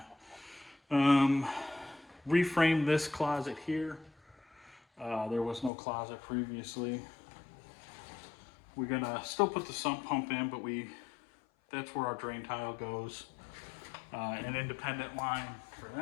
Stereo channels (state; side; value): drops out; right; at 5.7 s